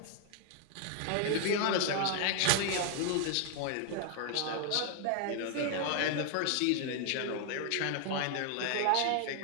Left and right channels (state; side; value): different; both; correlation 0.00